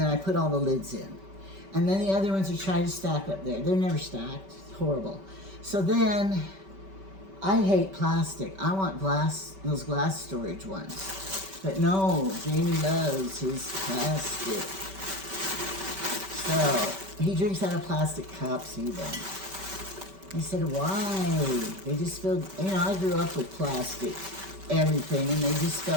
I put all the lids in. And then the other ones are trying to stack up there. They're never stacked. It's horrible. So then, I hate plastic. I want glass, those glass storage ones. But no, Jamie loves his plastic. So, he drinks out of plastic cups even. I said, why? They just feel, you know, I grew up with plastic, everything, and they just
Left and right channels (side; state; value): left; late; 5.2 ms